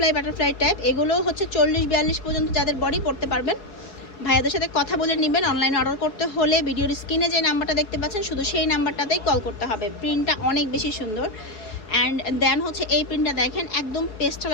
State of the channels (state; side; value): late; right; 4.7 ms